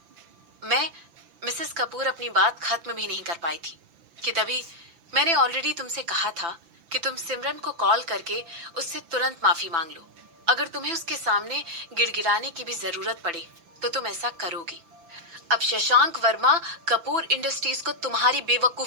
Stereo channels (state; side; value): late; left; 5.9 ms